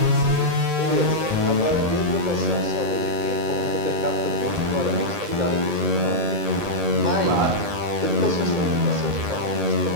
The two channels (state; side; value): late; left; 1.8 ms